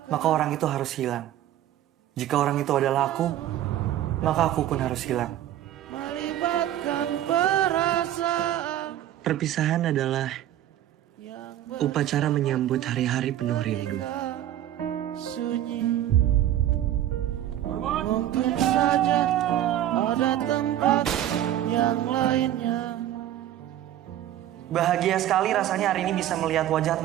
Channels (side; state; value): left; quieter; 12.3 dB